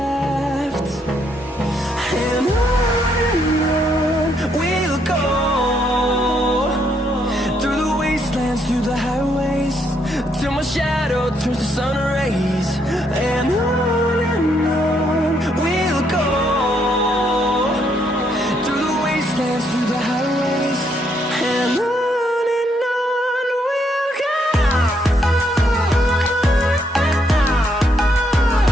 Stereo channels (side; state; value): both; normal; correlation 0.74